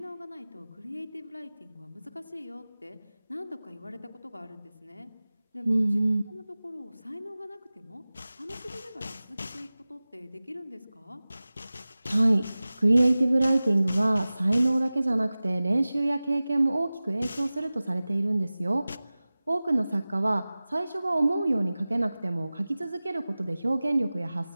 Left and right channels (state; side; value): inverted; both; correlation -0.98